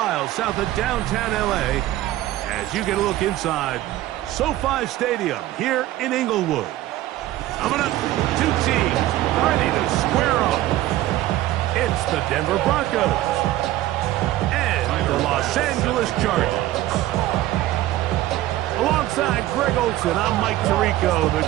south of downtown LA as you get a look inside SoFi Stadium here in Inglewood. Coming up, two teams ready to square off. It's the Denver Broncos and the Los Angeles Chargers. Alongside Greg Olsen, I'm Mike Tirico. The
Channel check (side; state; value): left; quieter; 15.1 dB